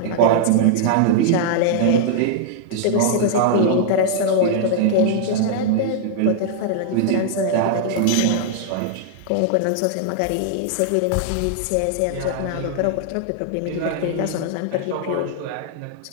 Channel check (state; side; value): different; both; correlation -0.01